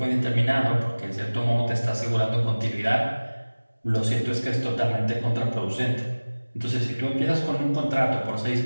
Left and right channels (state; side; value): inverted; both; correlation -1.00